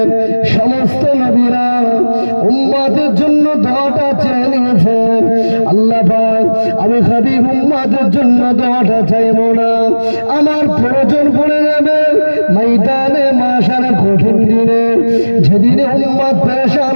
সমস্ত নবীরা উম্মতের জন্য দোয়াটা চেয়ে নিয়েছেন। আল্লাহ পাক আমি হাবিব উম্মতের জন্য দোয়াটা চাইব না, আমার প্রয়োজন পড়ে যাবে ময়দানে মাশারে কঠিন দিনে, যেদিনে উম্মত পেরেশান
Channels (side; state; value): both; inverted; correlation -1.00